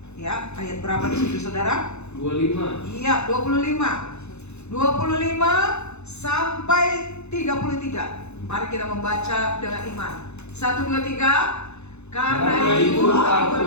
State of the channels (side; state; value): right; late; 0.81 ms